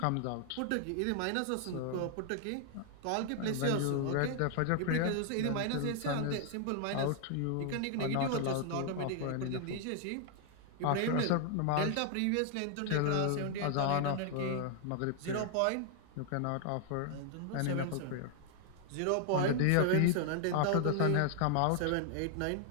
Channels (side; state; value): both; different; correlation 0.00